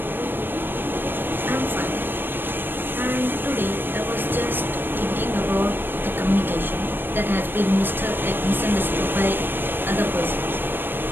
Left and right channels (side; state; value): left; late; 0.096 ms